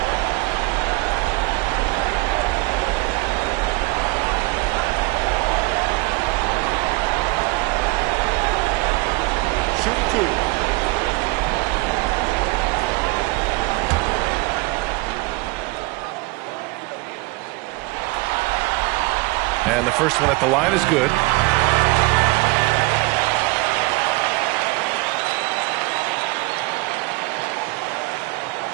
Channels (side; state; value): left; quieter; 24.1 dB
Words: Shoot 2. And the first one at the line is good.